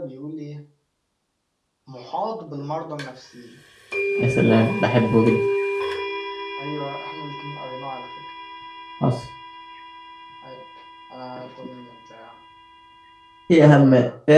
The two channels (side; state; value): both; identical; correlation 1.00